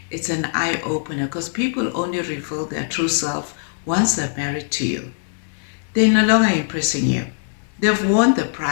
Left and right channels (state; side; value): silent; right; digital silence